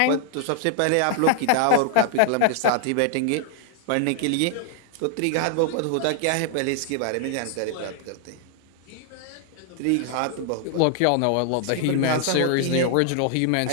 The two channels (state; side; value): different; both; correlation 0.00